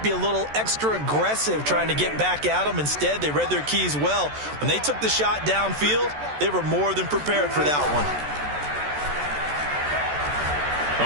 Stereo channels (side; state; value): left; late; 14 ms